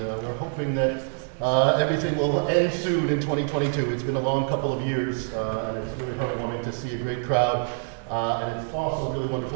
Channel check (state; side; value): silent; left; 59 dB below the other